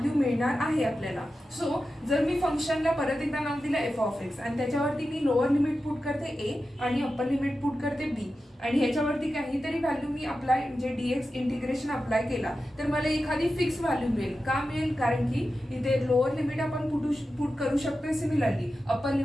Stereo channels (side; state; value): both; normal; correlation 0.92